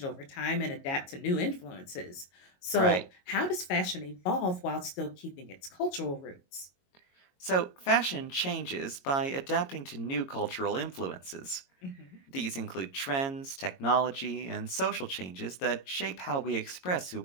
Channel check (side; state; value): right; late; 22 ms